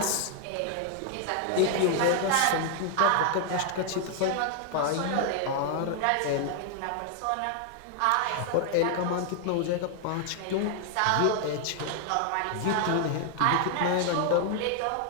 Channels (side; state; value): both; different; correlation 0.00